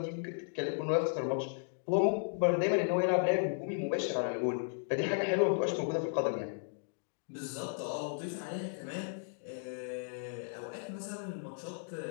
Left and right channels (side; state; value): right; silent; digital silence